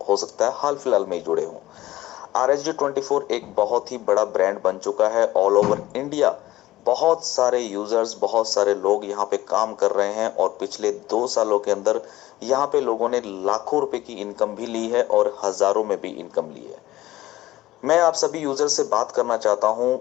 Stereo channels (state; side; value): quieter; right; 16.4 dB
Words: हो सकता है हाल फिलहाल में ही जुड़े हों। RSG24 एक बहुत ही बड़ा ब्रांड बन चुका है ऑल ओवर इंडिया। बहुत सारे यूजर्स, बहुत सारे लोग यहाँ पे काम कर रहे हैं और पिछले 2 सालों के अंदर यहाँ पे लोगों ने लाखों रुपए की इनकम भी ली है और हजारों में भी इनकम ली है। मैं आप सभी यूजर से बात करना चाहता हूँ